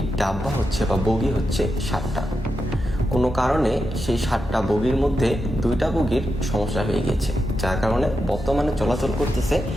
ডাব্বা হচ্ছে বা বগি হচ্ছে 7টা। কোনো কারণে সেই 7টা বগির মধ্যে 2টা বগির সমস্যা হয়ে গেছে, যার কারণে বর্তমানে চলাচল করতেছে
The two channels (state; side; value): normal; both; correlation 0.87